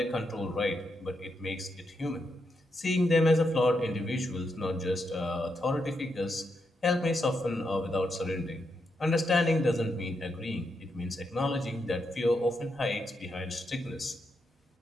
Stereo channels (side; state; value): both; normal; correlation 0.83